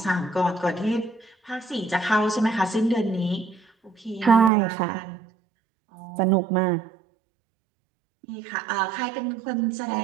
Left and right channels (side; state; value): left; drops out; at 4.5 s